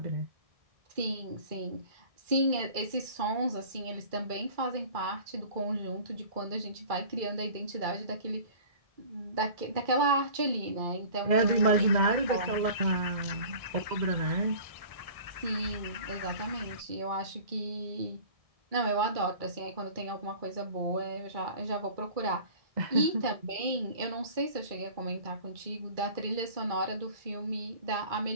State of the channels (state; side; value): late; left; 1.6 ms